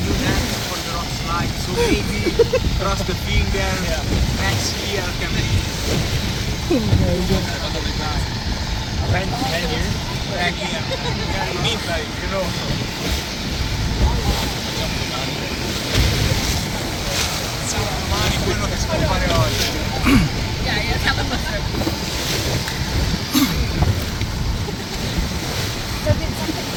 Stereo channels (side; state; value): both; identical; correlation 1.00